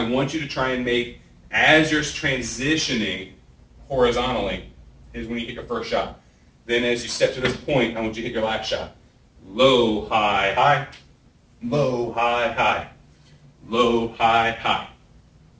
you to try and make, as you're transitioning horizontally, is when you hit your first shot. Then as you step to this point, I want you to hit your last shot. Low, high, high. Low, high, high. Low, high, high.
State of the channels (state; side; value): identical; both; correlation 1.00